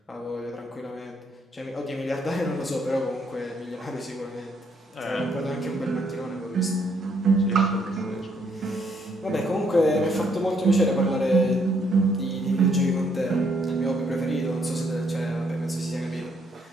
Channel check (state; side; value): normal; both; correlation 0.71